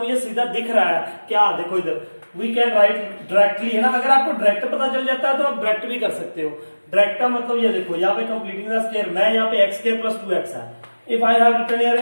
सीधा दिख रहा है क्या, देखो इधर वी कैन राइट डायरेक्टली है ना। अगर आपको डायरेक्ट पता चल जाता है तो आप डायरेक्ट भी कर सकते हो। डायरेक्ट का मतलब ये देखो यहाँ पे कंप्लीटिंग द स्क्वायर मैं यहाँ पे x स्क्वायर प्लस 2x है, if I have written here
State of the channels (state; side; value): inverted; both; correlation -1.00